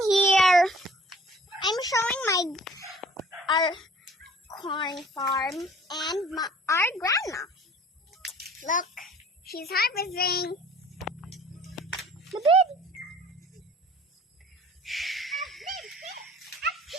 here? I'm showing our corn farm and our grandma. Look, she's harvesting the bed.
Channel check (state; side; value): normal; both; correlation 0.50